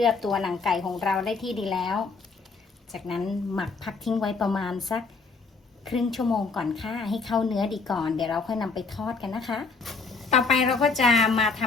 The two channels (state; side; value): quieter; right; 4.4 dB